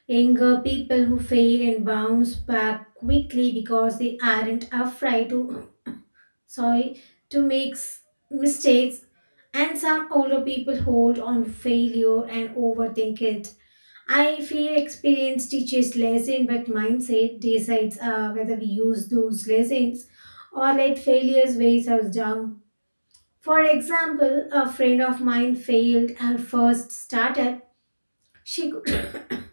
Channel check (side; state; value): both; inverted; correlation -1.00